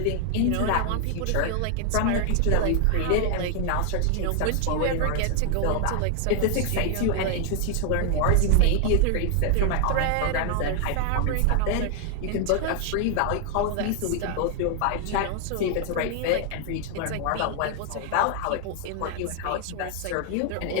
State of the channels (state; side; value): different; both; correlation 0.00